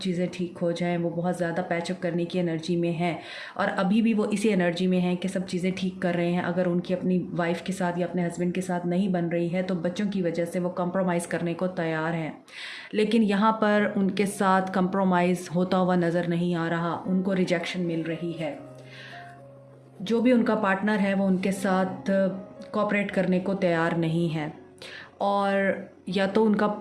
ठीक हो जाएं, वो बहुत ज़्यादा पैचअप करने की एनर्जी में है, और अभी भी वो इसी एनर्जी में हैं कि सब चीज़ें ठीक कर रहे हैं। अगर उनकी अपनी वाइफ के साथ या अपने हस्बैंड के साथ नहीं बन रही है तो बच्चों की वजह से वो कंप्रोमाइज़ करने को तैयार हैं, लेकिन यहाँ पर उनके साथ कंप्रोमाइज़ होता हुआ नज़र नहीं आ रहा, उनको रिजेक्शन मिल रही है। जो भी उनका पार्टनर है वो उनके साथ कोऑपरेट करने को तैयार नहीं है, और या तो उनका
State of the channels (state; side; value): identical; both; correlation 1.00